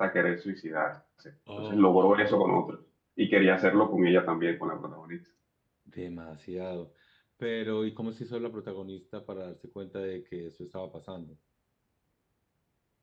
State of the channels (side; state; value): both; identical; correlation 1.00